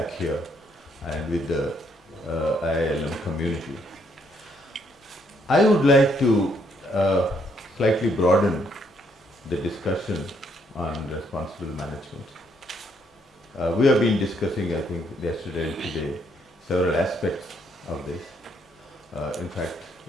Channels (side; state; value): both; normal; correlation 0.71